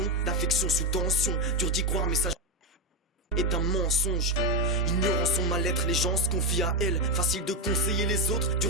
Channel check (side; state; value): both; normal; correlation 0.09